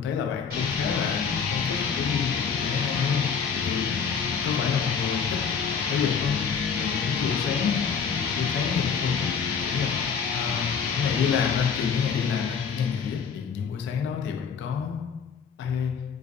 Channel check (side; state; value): right; quieter; 6.3 dB